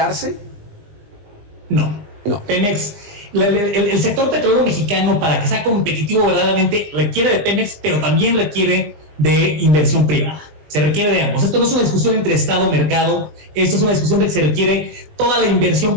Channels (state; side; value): late; left; 20 ms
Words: No. Pemex, el sector petrolero mexicano, para que sea competitivo verdaderamente, requiere de Pemex, pero también requiere de inversión privada. Se requiere de ambos. Esto no es una discusión entre Estado y mercado, esto es una discusión de que se requiere toda la inversión